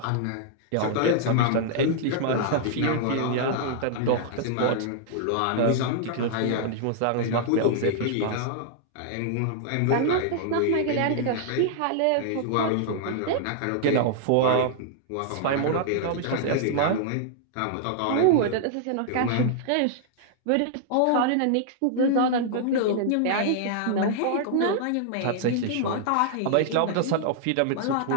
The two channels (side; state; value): both; different; correlation -0.01